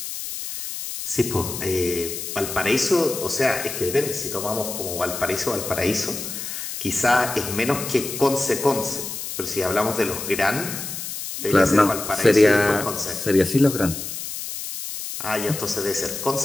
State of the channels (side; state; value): left; noise; hiss, 7 dB below the sound